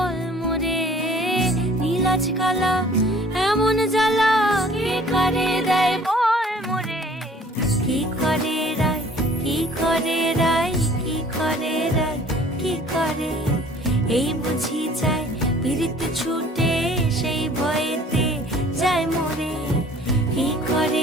মোরে নীলাজ কালা এমন জ্বালা কে কারে দেয় বল মোরে কি করে রায় কি করে রায় কি করে রায় কি করে এই বুঝি যায় পীড়িত ছুটে সেই ভয়েতে যায় মরে কি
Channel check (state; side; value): normal; both; correlation 0.53